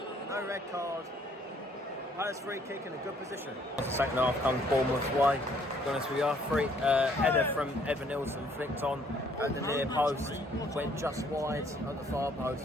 No red card. Palace free kick in a good position. Second half comes Bournemouth's way. To be honest with you, header from Evan Nilsson flicked on at the near post, went just wide at the far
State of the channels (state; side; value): normal; both; correlation 0.63